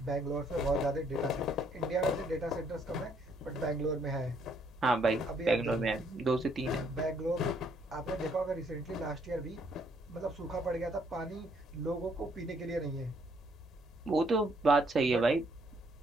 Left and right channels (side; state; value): both; normal; correlation 0.68